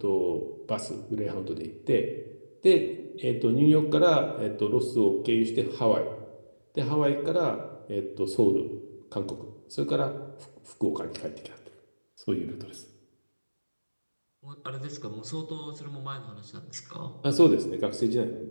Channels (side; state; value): both; inverted; correlation -1.00